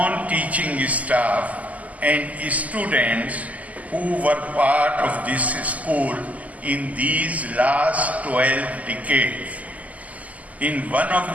staff and students who were part of this school in these last 12 decades. In one of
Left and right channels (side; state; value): left; late; 0.074 ms